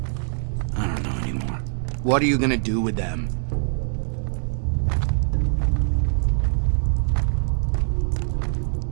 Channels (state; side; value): silent; left; 63 dB below the other